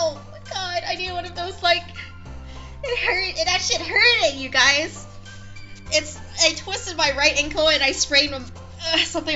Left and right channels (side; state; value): both; identical; correlation 1.00